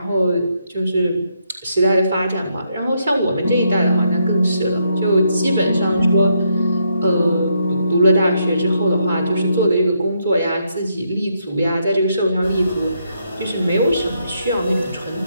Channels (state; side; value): inverted; both; correlation -0.77